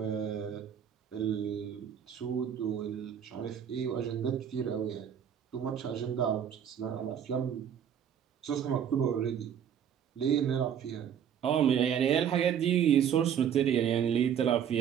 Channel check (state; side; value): quieter; left; 8.8 dB